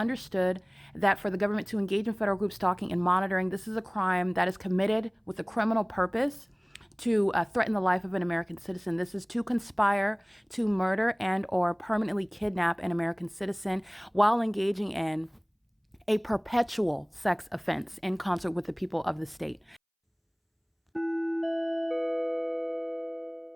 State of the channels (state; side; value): identical; both; correlation 1.00